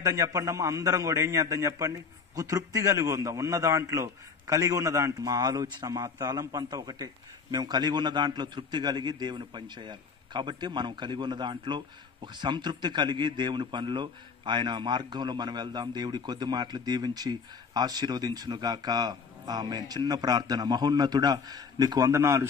చెప్పండి అమ్మా, అందరం కూడా ఏం చేద్దాం చెప్పండి? ఒక తృప్తి కలిగి ఉందాం ఉన్న దాంట్లో, కలిగి ఉన్న దాంట్లో. మా ఆలోచన, మా తలంపు అంతా ఒకటే, మేము కలిగి ఉన్న దాంట్లో తృప్తి కలిగి దేవుని పని చేయాలి. కాబట్టి మనం కలిగి ఉన్న దాంట్లో ఒక సంతృప్తి కలిగి దేవుని పనిలో, ఆయన మార్గంలో మనం వెళ్దాం. దేవుడి కొద్ది మాటలు దీవించి ఆశీర్వదించునుగాక. ఆమేన్. చిన్న ప్రార్థన. మహోన్నతుడా, నీకు వందనాలు,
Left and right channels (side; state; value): right; quieter; 5.5 dB